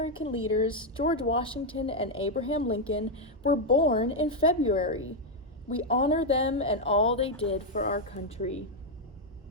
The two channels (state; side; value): normal; both; correlation 0.01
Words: leaders, George Washington and Abraham Lincoln, were born in February. We honor them and all they did for our country.